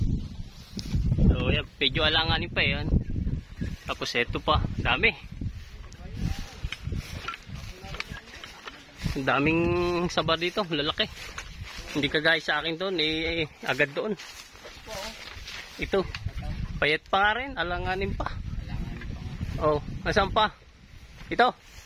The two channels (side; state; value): both; identical; correlation 1.00